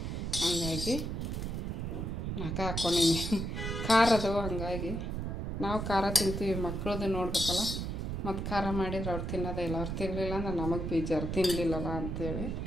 ಹಂಗಾಗಿ 4 ಹಾಕ್ಕೊಂಡೀನಿ. ಖಾರ ಅದಾವ, ಹಂಗಾಗಿ ನಾವು ಖಾರ ತಿಂತೀವಿ, ಮಕ್ಕಳದ್ದು ನೋಡ್ಬೇಕಲ್ಲ. ಮತ್ತು ಖಾರ ಮಾಡಿದ್ರೆ ಅವ್ರು ತಿನ್ನೋದೇ ಇಲ್ಲ. ಅವ್ರು ತಿನ್ನಲಿಲ್ಲ ಅಂದ್ರೆ ನಮಗೆ ಬೇಜಾರು, ತಿನ್ನಲಿಲ್ಲಲ್ಲ ಅಂಥೇಳಿ.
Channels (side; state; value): right; noise; rumble, 3 dB below the sound